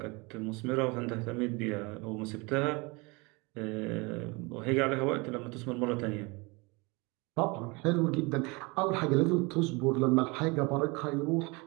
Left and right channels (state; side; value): quieter; left; 26.9 dB